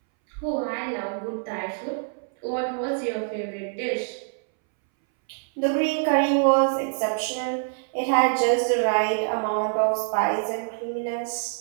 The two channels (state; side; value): silent; left; 62 dB below the other